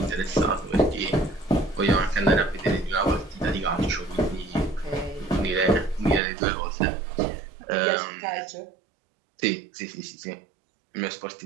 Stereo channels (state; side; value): drops out; left; at 6.2 s